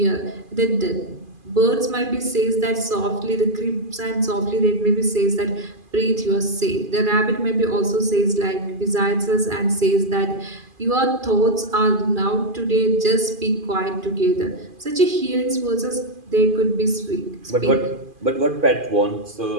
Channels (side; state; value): left; late; 2.5 ms